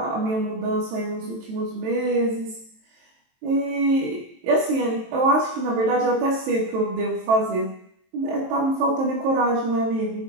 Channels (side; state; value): left; late; 23 ms